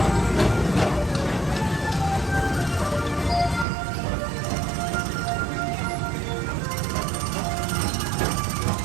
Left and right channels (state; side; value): drops out; left; at 3.7 s